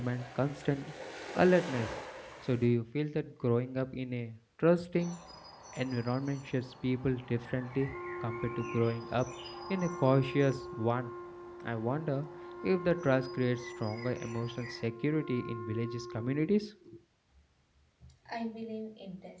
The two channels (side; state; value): both; identical; correlation 1.00